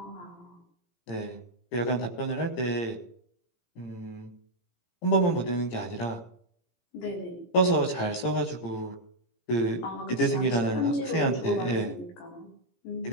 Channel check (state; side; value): late; right; 17 ms